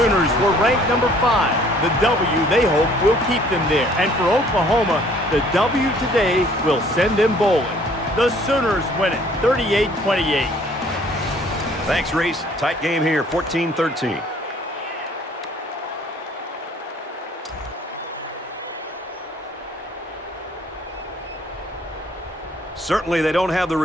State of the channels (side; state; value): both; normal; correlation 0.58